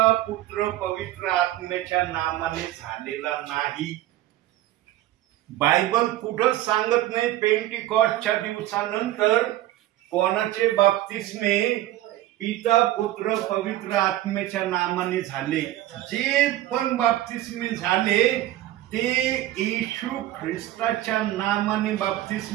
पुत्र पवित्र आत्म्याच्या नामाने झालेला नाही. बायबल कुठंच सांगत नाही पेंटिकॉस्टच्या दिवसानंतर कोणाचे बाप्तिस्मे पिता पुत्र पवित्र आत्म्याच्या नामाने झाले. जे पण बाप्तिस्मे झाले ते येशू ख्रिस्ताच्या नामाने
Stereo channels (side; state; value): left; quieter; 14.7 dB